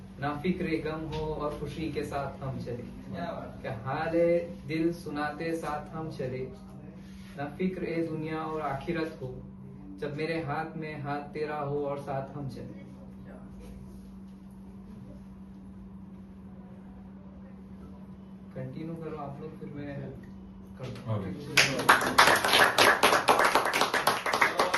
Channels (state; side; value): identical; both; correlation 1.00